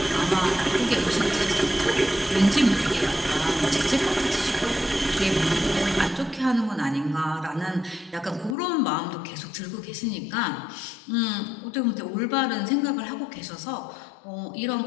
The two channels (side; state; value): right; drops out; at 8.6 s